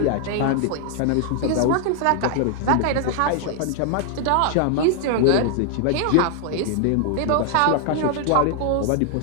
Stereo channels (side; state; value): both; different; correlation 0.00